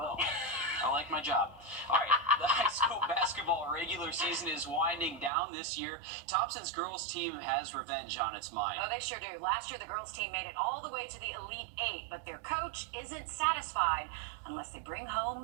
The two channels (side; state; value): left; drops out; at 5.3 s